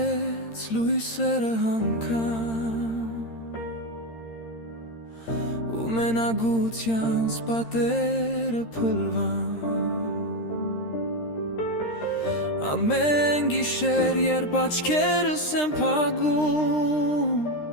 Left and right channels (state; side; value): late; right; 13 ms